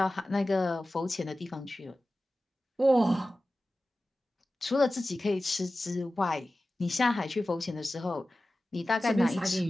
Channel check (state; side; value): normal; both; correlation 0.95